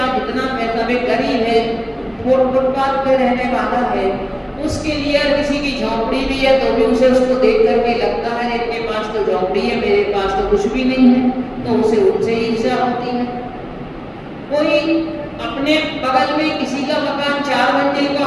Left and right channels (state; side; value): identical; both; correlation 1.00